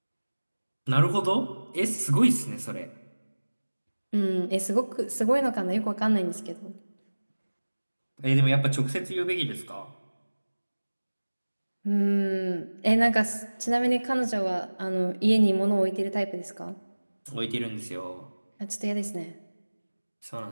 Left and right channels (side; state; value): both; inverted; correlation -1.00